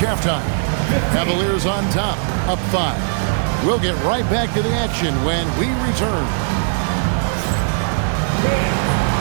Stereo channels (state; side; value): silent; left; 59 dB below the other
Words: halftime. Cavaliers on top, up 5. We'll get right back to the action when we return.